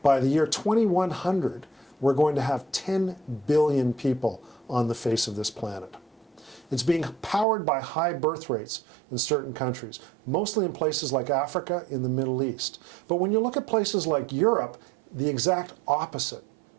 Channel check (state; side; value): drops out; left; at 7.5 s